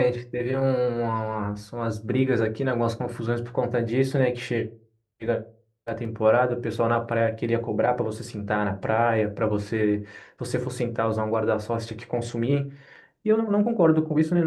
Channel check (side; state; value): both; identical; correlation 1.00